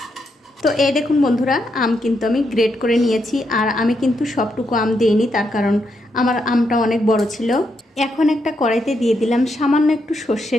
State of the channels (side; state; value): both; normal; correlation 0.80